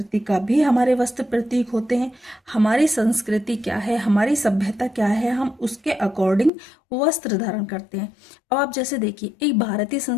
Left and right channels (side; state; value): right; drops out; at 6.5 s